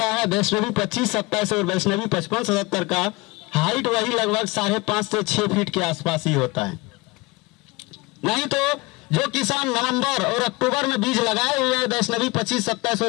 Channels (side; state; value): right; quieter; 23.5 dB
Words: है। वैष्णवी 25-27 और वैष्णवी 55-77 का हाइट वही लगभग 5.5 से 6 फीट के आसपास ही होता है। नहीं तो जो किसान नवंबर और अक्टूबर में बीज लगाए हुए हैं वैष्णवी 25-27